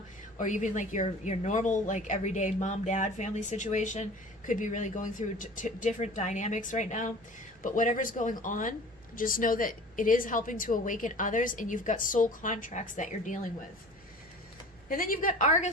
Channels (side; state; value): right; noise; hum, 30 dB below the sound